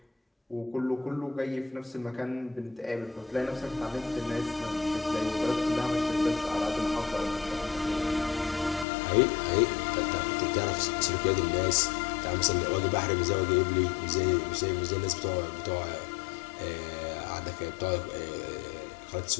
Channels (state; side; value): drops out; right; at 8.8 s